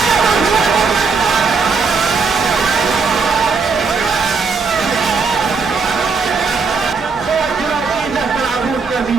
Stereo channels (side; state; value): left; quieter; 4.8 dB